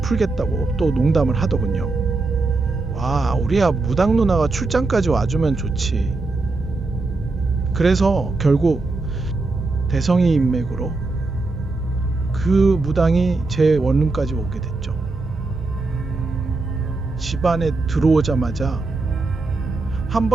또 농담을 하더군요. 와, 우리야 무당 누나가 출장까지 와주면 좋지. 그래서 결국 대성이 인맥으로 그 무당이 제 원룸까지 오게 됐죠. 집 안에 들어오자마자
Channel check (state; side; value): quieter; left; 3.5 dB